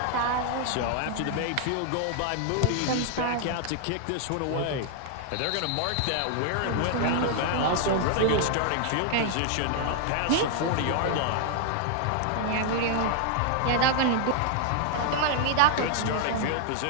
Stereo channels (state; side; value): different; both; correlation 0.00